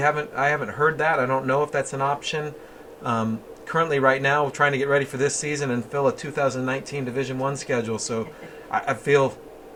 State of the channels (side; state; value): both; identical; correlation 1.00